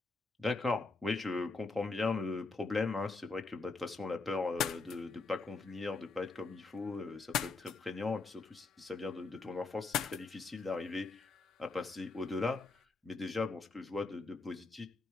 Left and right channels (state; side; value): quieter; right; 3.8 dB